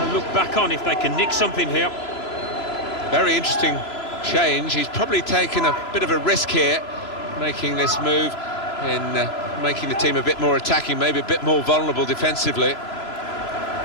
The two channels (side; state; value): right; late; 3.0 ms